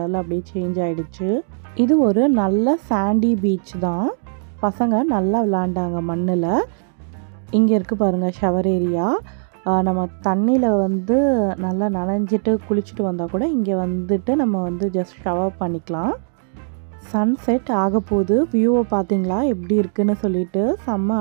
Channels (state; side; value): silent; left; digital silence